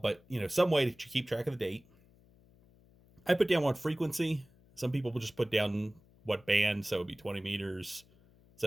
some way to keep track of the date. I put down what frequency. Some people will just put down what band, so it'd be 20 meters,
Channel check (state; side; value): noise; left; hum, 29 dB below the sound